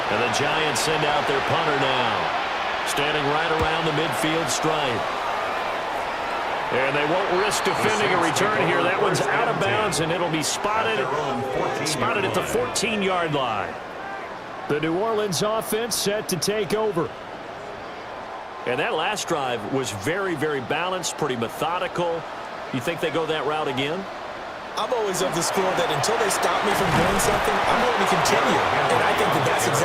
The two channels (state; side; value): identical; both; correlation 1.00